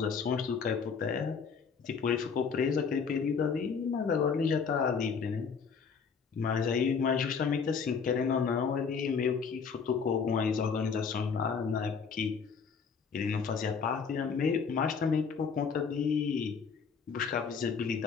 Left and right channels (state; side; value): quieter; right; 5.9 dB